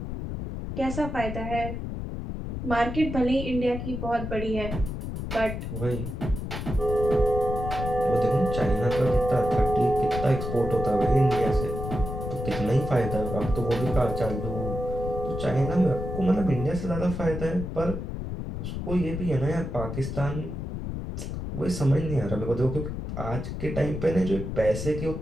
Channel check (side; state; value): left; noise; rumble, 5 dB below the sound